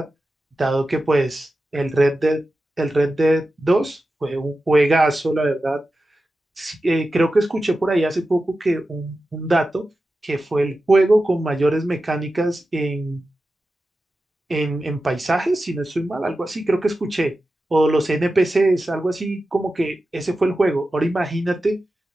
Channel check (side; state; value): both; normal; correlation 0.93